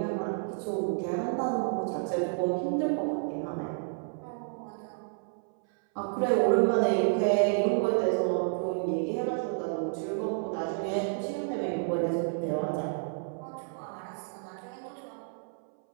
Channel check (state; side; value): silent; left; 58 dB below the other